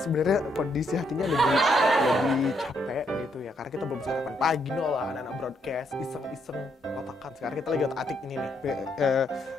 kondisi hatinya lebih capek gitu ya, karena kita belum sarapan pagi lah, anak-anak broadcast iseng otakan. Sekarang kita lagi otak-atik ini nih,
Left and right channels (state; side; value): normal; both; correlation 0.75